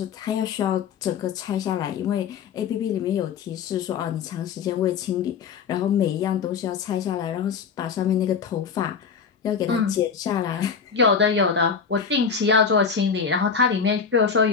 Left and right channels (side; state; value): right; quieter; 6.3 dB